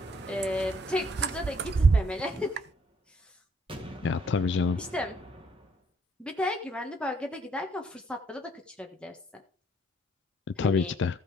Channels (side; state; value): both; normal; correlation 0.66